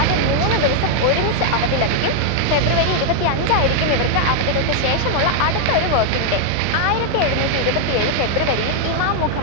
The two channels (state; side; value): different; both; correlation 0.00